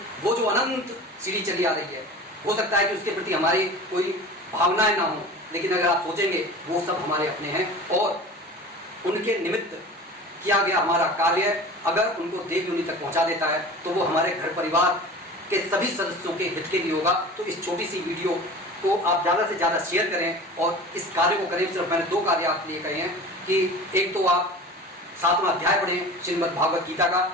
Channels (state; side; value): normal; both; correlation 0.37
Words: वो जो अनंत सीढ़ी चली आ रही है, हो सकता है कि उसके प्रति हमारी कोई भावनाएं ना हो, लेकिन अगर आप सोचेंगे वो सब हमारे अपने हैं, और उनके निमित्त किया गया हमारा कार्य अगर उनको देव योनि तक पहुंचा देता है तो वो हमारे घर परिवार के सभी सदस्यों के हित के लिए होगा। तो इस छोटी सी वीडियो को आप ज़्यादा से ज़्यादा शेयर करें और इस कार्य को करें। सिर्फ मैंने 2 कार्य आपके लिए कहे हैं कि एक तो आप 7वां अध्याय पढ़ें श्रीमद् भागवत गीता का,